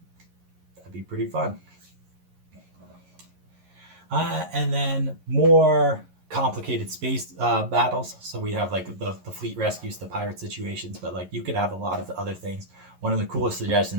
be pretty fun. And then more complicated space battles. So we have like the fleet rescues, the pirate situations, but like you could have a lot of other things. One of the coolest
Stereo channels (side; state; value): left; late; 11 ms